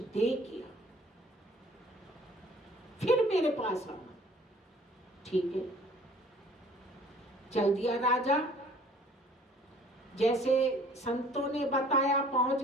किया, फिर मेरे पास आना। ठीक है, चल दिया राजा। जैसे संतों ने बताया पहुंच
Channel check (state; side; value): normal; both; correlation 0.53